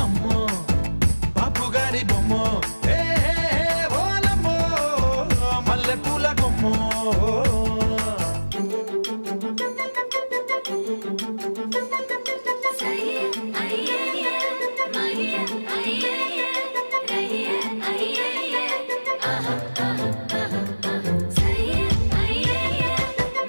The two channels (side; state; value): both; inverted; correlation -1.00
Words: అమ్మో బాపు గారి బొమ్మో, ఓలమ్మో మల్లె పూల కొమ్మో.